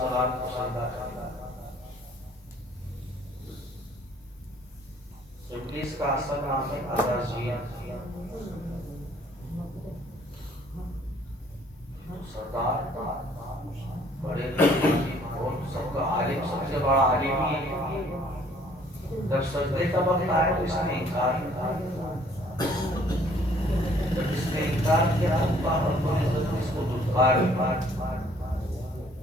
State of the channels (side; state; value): both; normal; correlation 0.59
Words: کریں۔ ابلیس کا اصل نام ہے عزازیل، سردار بڑے اور سب کا عالم، سب سے بڑا عالم ہی ہے۔ جب سجدے کا وقت آیا تو اس نے انکار کیا، جب اس نے انکار کیا تو اللہ رب العزت نے اس کو دھتکار